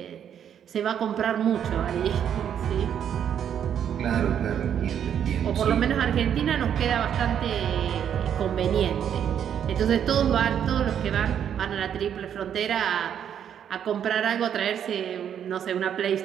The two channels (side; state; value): left; quieter; 9.0 dB